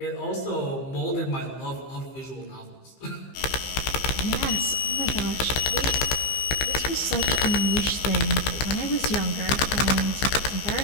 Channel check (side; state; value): right; late; 15 ms